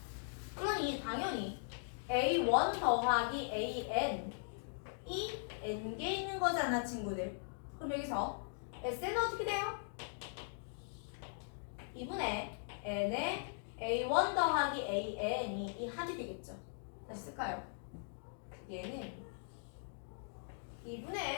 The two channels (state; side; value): silent; right; digital silence